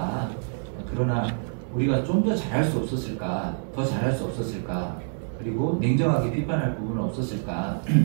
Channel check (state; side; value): silent; left; 61 dB below the other